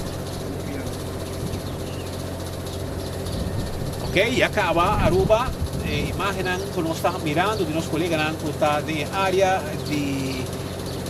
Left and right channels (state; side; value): identical; both; correlation 1.00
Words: Ok, e acaba Aruba, imaginan que nós estamos mirando de nossos colegas que está de área de